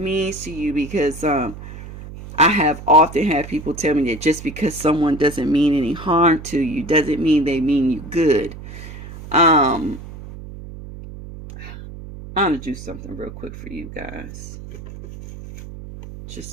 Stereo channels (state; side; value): noise; right; hum, 13 dB below the sound